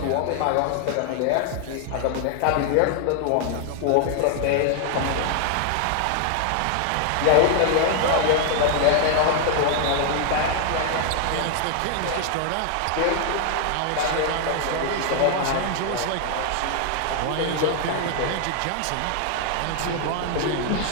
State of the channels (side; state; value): both; different; correlation 0.00